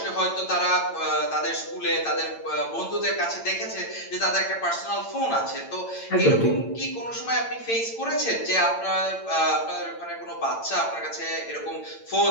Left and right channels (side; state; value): right; late; 8.8 ms